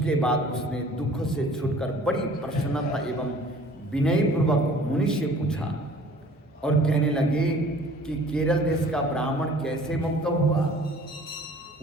बाद उसने दुख से छूटकर बड़ी प्रसन्नता एवं विनयपूर्वक मुनि से पूछा और कहने लगे कि केरल देश का ब्राह्मण कैसे मुक्त हुआ,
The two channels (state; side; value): normal; both; correlation 0.50